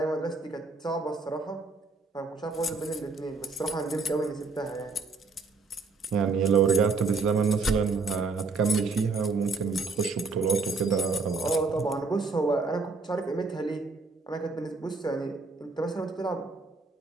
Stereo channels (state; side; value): quieter; left; 4.1 dB